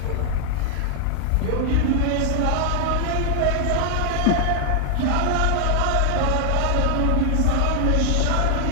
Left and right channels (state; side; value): different; both; correlation 0.00